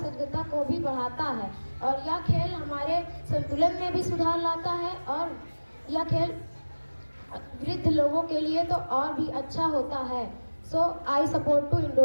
को भी बढ़ाता है, और यह खेल हमारे संतुलन में भी सुधार लाता है। और यह खेल वृद्ध लोगों के लिए तो और भी अच्छा होता है। So I support to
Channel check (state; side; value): inverted; both; correlation -1.00